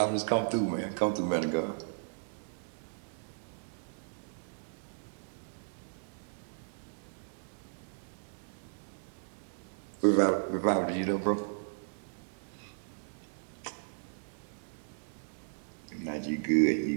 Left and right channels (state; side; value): silent; left; digital silence